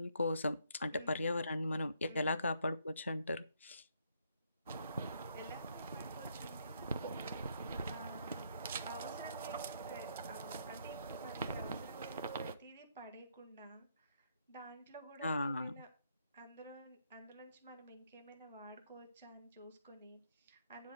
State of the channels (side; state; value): both; inverted; correlation -0.72